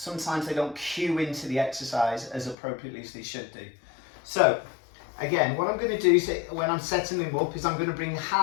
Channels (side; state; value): right; drops out; at 2.6 s